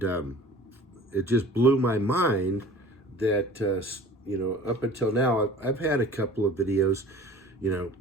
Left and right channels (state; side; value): normal; both; correlation 0.45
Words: it just blew my mind that, up until now, I've had a couple of videos,